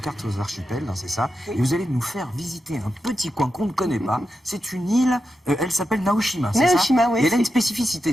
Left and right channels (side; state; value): both; normal; correlation 0.89